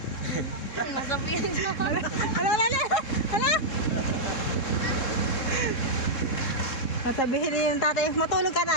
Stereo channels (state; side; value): late; right; 3.7 ms